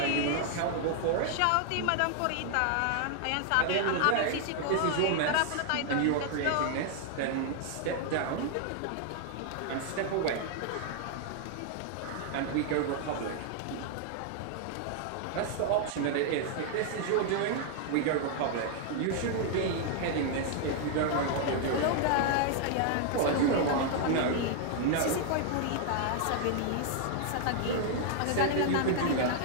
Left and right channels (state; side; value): different; both; correlation 0.00